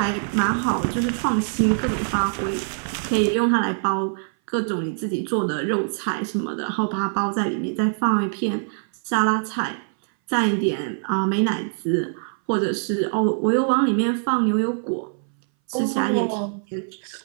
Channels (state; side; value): silent; left; 60 dB below the other